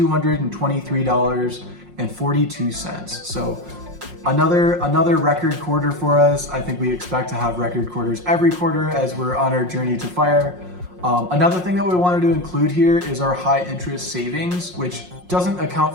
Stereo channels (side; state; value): left; late; 5.6 ms